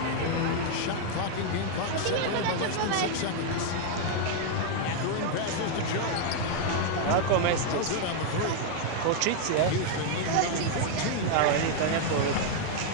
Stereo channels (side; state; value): both; different; correlation 0.00